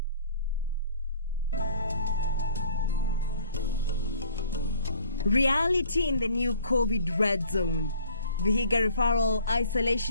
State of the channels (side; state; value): both; inverted; correlation -0.52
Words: Reality in the new COVID red zone. Vihiga Referral